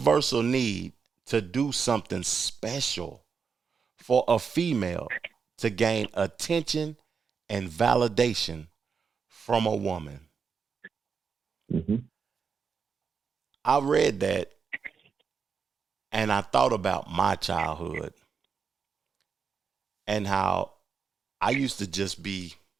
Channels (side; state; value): left; quieter; 5.9 dB